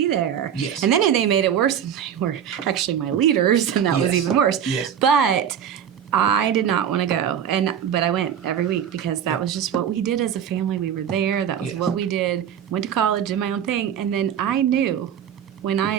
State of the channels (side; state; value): left; quieter; 9.0 dB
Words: there. Yes. And then they made it worse, and they were actually my leaders, and that was Yes. even worse. Yes. But I did not want to go, but I went every week because that was just what we did as a family. We were there. That was Yes. what we did. Went to college, did my own thing, and then I knew